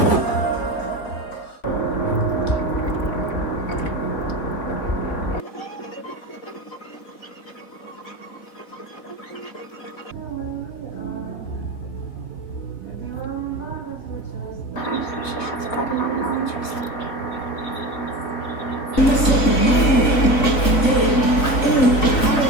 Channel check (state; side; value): late; right; 4.0 ms